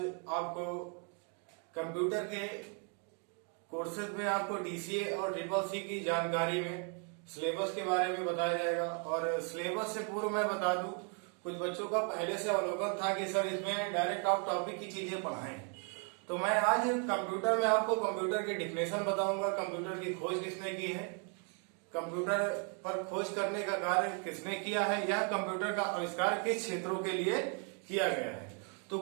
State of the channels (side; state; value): left; quieter; 39.5 dB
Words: आपको कंप्यूटर के कोर्सेज में आपको डीसीए और ट्रिपल सी की जानकारी में सिलेबस के बारे में बताया जाएगा। और सिलेबस से पूर्व मैं बता दूं, कुछ बच्चों का पहले से अवलोकन था कि सर इसमें डायरेक्ट आप टॉपिक की चीजें पढ़ाएं, तो मैं आज कंप्यूटर में आपको कंप्यूटर की डिफिनेशन बताऊंगा, कंप्यूटर की खोज किसने की है, कंप्यूटर पर खोज करने का कार्य किसने किया है, यह कंप्यूटर का आविष्कार किस क्षेत्रों के लिए किया गया है। तो